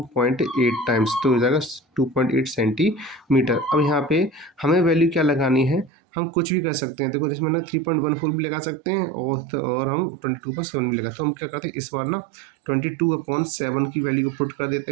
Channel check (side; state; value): left; drops out; at 5.9 s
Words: टाइम्स, तो हो जाएगा 2.8 सेंटीमीटर। अब यहाँ पे हमें वैल्यू क्या लगानी है, हम कुछ भी कर सकते हैं। देखो जिसमें ना 3.14 भी लगा सकते हैं और हम 22/7 भी लगा, तो हम क्या करते हैं इस बार ना 22/7 की वैल्यू को पुट कर देते